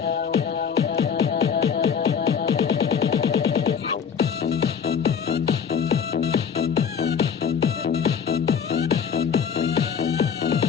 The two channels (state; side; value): quieter; right; 7.1 dB